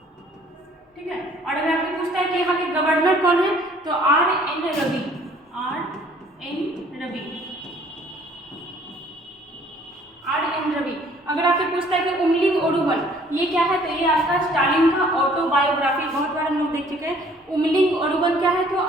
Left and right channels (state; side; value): normal; both; correlation 0.57